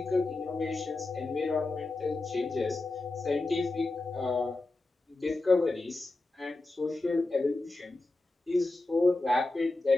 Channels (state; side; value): quieter; right; 3.1 dB